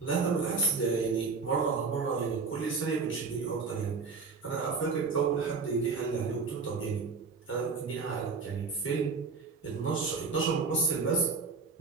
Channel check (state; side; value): quieter; left; 4.7 dB